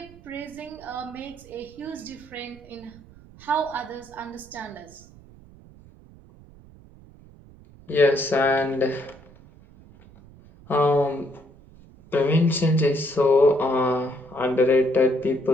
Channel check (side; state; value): right; noise; rumble, 23 dB below the sound